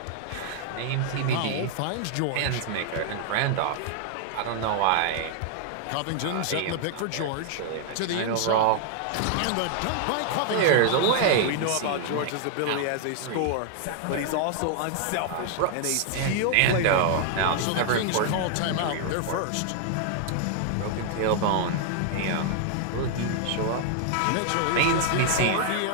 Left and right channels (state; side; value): different; both; correlation 0.00